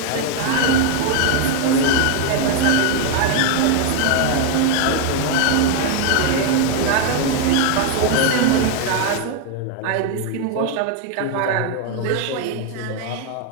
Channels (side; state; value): both; different; correlation 0.01